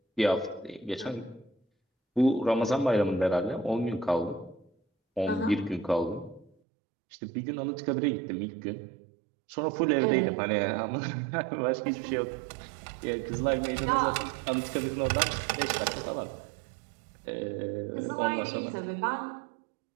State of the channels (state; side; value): drops out; left; at 6.5 s